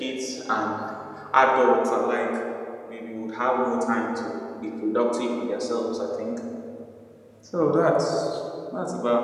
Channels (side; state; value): both; identical; correlation 1.00